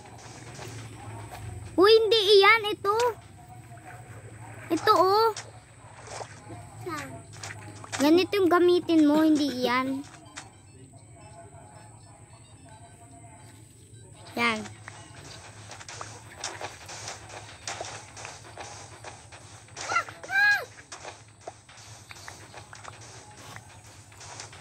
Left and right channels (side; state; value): both; identical; correlation 1.00